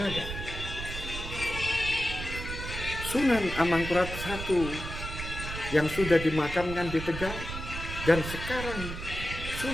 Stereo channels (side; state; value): right; noise; rumble, 7 dB below the sound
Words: Sunan Amangkurat I yang sudah dimakamkan di Tegal, dan sekarang